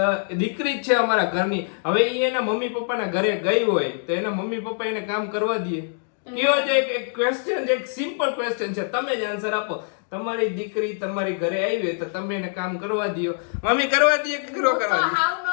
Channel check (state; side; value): silent; right; 63 dB below the other